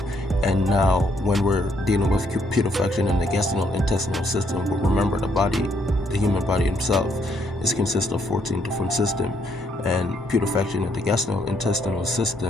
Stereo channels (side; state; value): both; normal; correlation 0.72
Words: And now when we're dealing with putrefaction in the gastrointestinal system, remember the human body itself is consists of 14 different systems, and putrefaction in the gastrointestinal